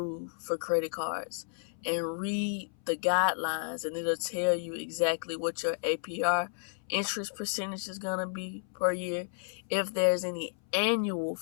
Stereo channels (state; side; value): silent; right; 56 dB below the other